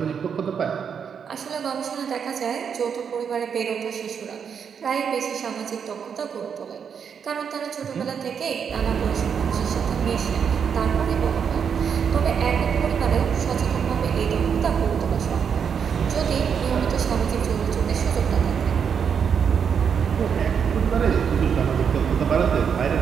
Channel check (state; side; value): quieter; left; 7.1 dB